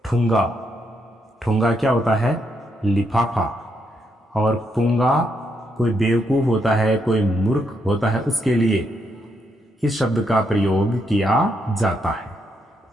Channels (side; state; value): both; normal; correlation 0.78